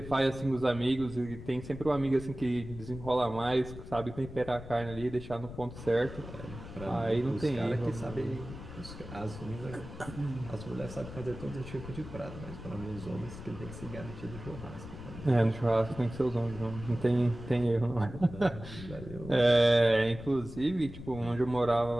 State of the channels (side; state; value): left; noise; rumble, 12 dB below the sound